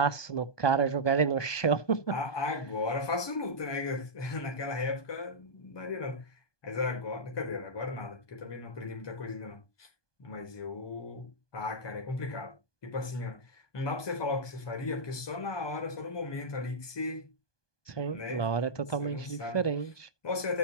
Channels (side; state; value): right; late; 1.2 ms